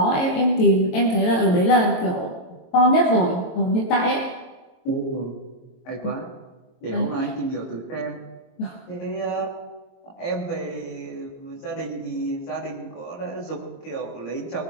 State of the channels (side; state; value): right; late; 22 ms